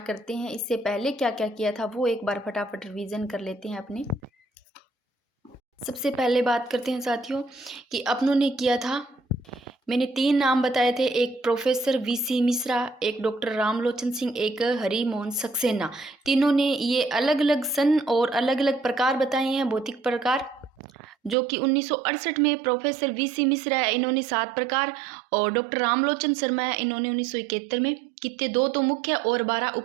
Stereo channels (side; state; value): left; drops out; at 21.4 s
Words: करते हैं। इससे पहले क्या क्या किया था वो एक बार फटाफट रिवीजन कर लेते हैं अपने। सबसे पहले बात करते हैं साथियों कि अपनों ने किया था, मैंने 3 नाम बताए थे, एक प्रोफेसर वीसी मिश्रा, एक डॉक्टर रामलोचन सिंह, एक हरि मोहन सक्सेना। तीनों ने ये अलग अलग सन और अलग अलग प्रकार बताए हैं, भौतिक प्रकार, जो कि 1968 में प्रोफेसर वीसी मिश्रा है, इन्होंने 7 प्रकार, और डॉक्टर रामलोचन शर्मा है, इन्होंने 1971 में कितने 2 तो मुख्य और 12